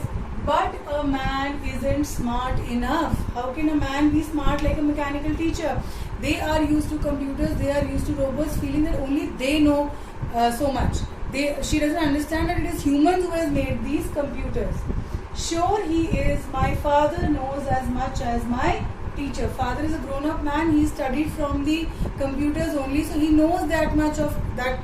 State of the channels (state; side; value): identical; both; correlation 1.00